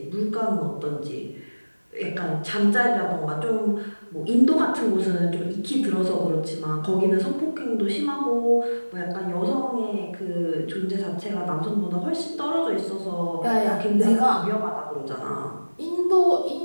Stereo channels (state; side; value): inverted; both; correlation -1.00